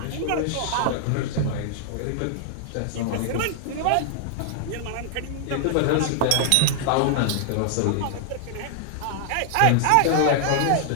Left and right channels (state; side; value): different; both; correlation -0.01